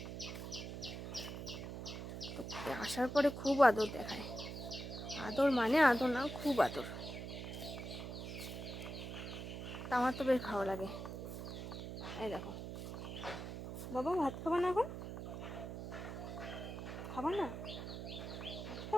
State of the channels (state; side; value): noise; right; hum, 7 dB below the sound